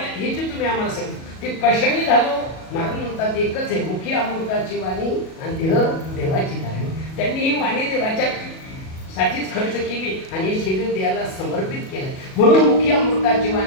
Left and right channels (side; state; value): right; late; 37 ms